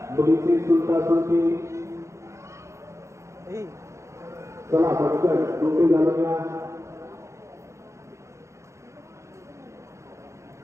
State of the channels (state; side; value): late; left; 0.14 ms